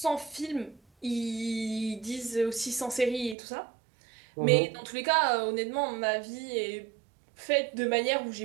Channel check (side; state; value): left; drops out; at 3.4 s